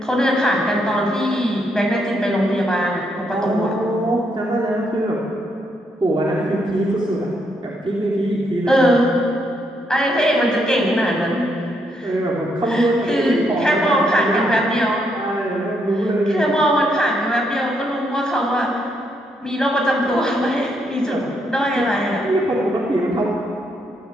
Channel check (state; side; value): normal; both; correlation 0.76